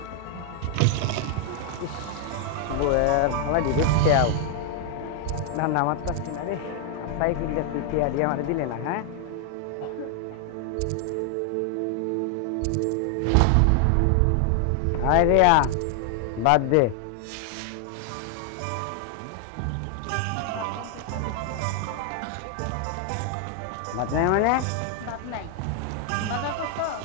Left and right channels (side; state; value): both; different; correlation 0.00